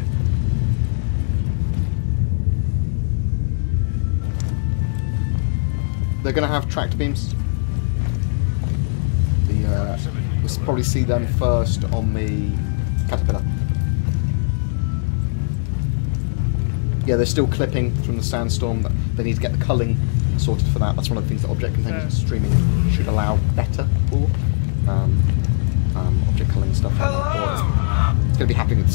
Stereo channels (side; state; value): right; silent; digital silence